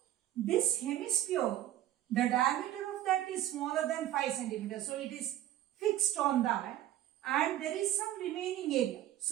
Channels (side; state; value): left; quieter; 13.0 dB